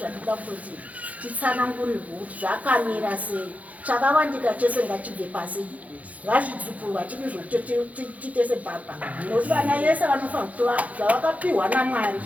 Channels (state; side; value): late; left; 0.071 ms